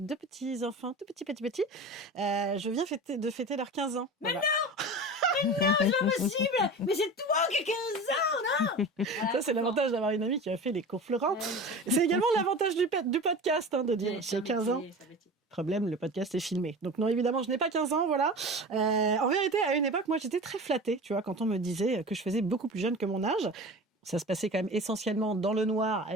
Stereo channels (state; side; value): normal; both; correlation 0.34